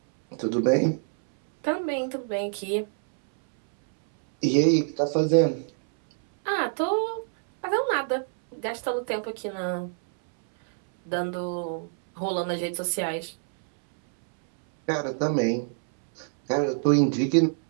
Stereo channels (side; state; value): left; silent; 61 dB below the other